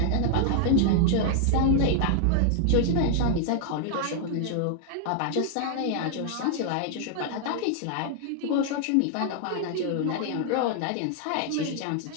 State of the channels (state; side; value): different; both; correlation 0.00